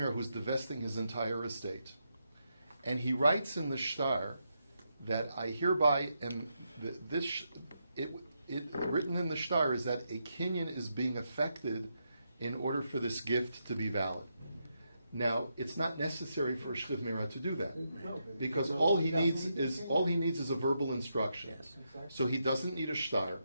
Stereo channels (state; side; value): inverted; both; correlation -0.83